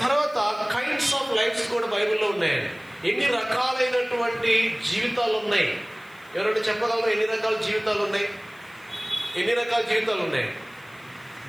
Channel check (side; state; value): left; noise; hiss, 28 dB below the sound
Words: తర్వాత కైండ్స్ ఆఫ్ లైఫ్స్ కూడా బైబిల్లో ఉన్నాయండి. ఎన్ని రకాలైనటువంటి జీవితాలు ఉన్నాయి? ఎవరైనా చెప్పగలరు ఎన్ని రకాల జీవితాలు ఉన్నాయి? ఎన్ని రకాల జీవితాలు ఉన్నాయి